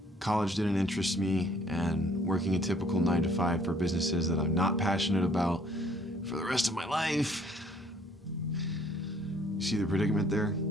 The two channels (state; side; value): normal; both; correlation 0.61